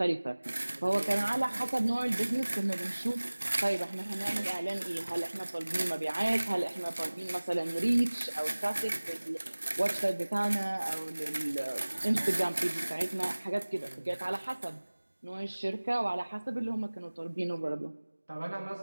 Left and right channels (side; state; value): both; inverted; correlation -1.00